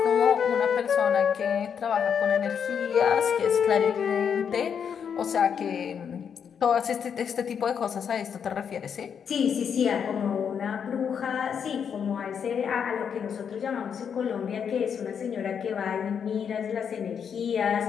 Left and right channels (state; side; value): quieter; right; 7.4 dB